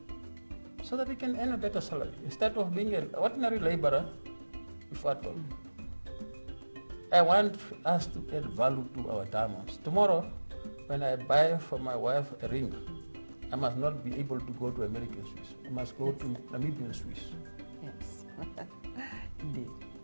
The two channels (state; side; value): inverted; both; correlation -1.00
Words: so that he can earn a better salary, instead of being an ordinary laborer without value. I want us to add value to our diamonds. Tomorrow, when I buy for my wife a ring, I must not be able to go to American Swiss. I must go to Namibian Swiss. Yes, indeed.